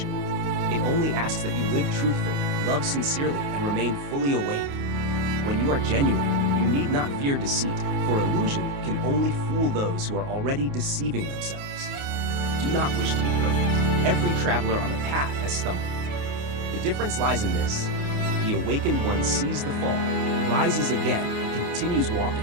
It only asks that you live truthfully, love sincerely, and remain fully awake. When you are genuine, you need not fear deceit, for illusion can only fool those who are already deceiving themselves. Do not wish to be perfect. Every traveler on the path has stumbled. The difference lies in this. The awakened one sees the fall, rises again, and continues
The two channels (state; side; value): late; left; 28 ms